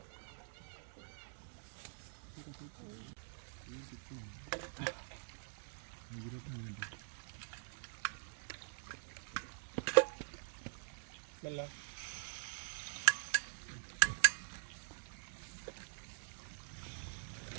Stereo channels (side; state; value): left; silent; digital silence